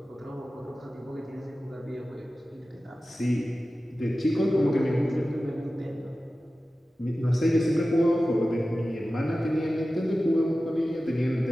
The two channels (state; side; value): normal; both; correlation 0.95